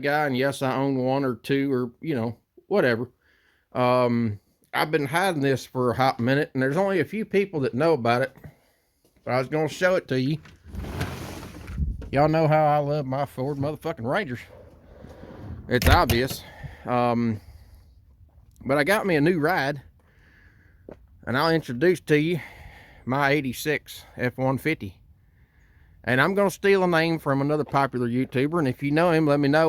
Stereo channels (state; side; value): identical; both; correlation 1.00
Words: guy, and yes, I own one or two or, whatever. I've been hiding this for a hot minute, and there's only a few people that know about it. But I was going to show it to you. Y'all know how I love my Ford motherfucking Rangers. It's obvious. But I got me a new ride, and I'll introduce to you my 86 F-150. And I'm going to steal a name from another popular YouTuber, and if you know him, let me